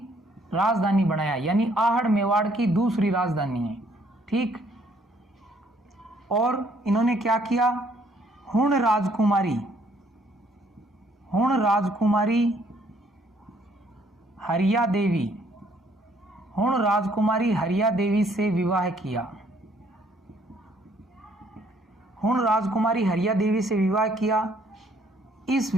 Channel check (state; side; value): normal; both; correlation 0.65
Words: राजधानी बनाया, यानी आहड़ मेवाड़ की दूसरी राजधानी है। ठीक। और इन्होंने क्या किया, हुण राजकुमारी हरिया देवी से विवाह किया। हुण राजकुमारी हरिया देवी से विवाह किया। इस